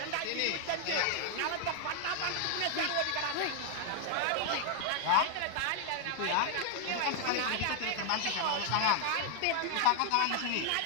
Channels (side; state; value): both; different; correlation 0.00